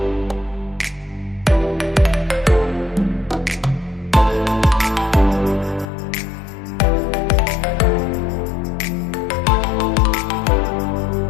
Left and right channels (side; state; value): right; drops out; at 5.9 s